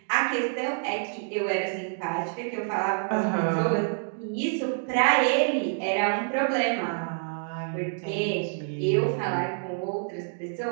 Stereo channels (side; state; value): left; silent; digital silence